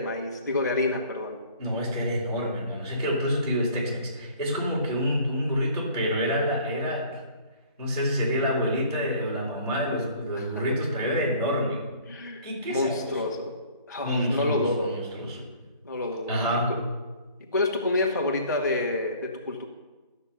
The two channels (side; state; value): both; inverted; correlation -0.52